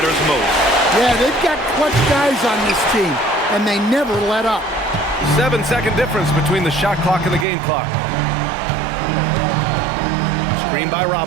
most. Yeah, they've got clutch guys on this team, and they never let up. 7-second difference between the shot clock and the game clock. Screen by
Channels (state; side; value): drops out; left; at 7.5 s